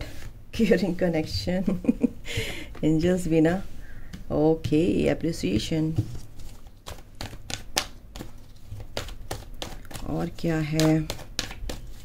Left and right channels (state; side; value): identical; both; correlation 1.00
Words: क्यूरिंग कनेक्शन एंजल्स भी ना। Okay, appreciation. और क्या है,